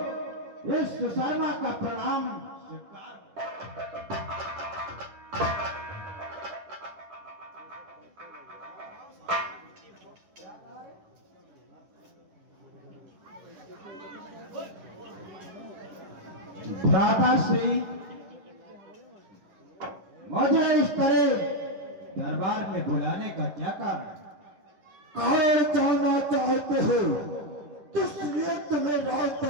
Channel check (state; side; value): late; left; 10 ms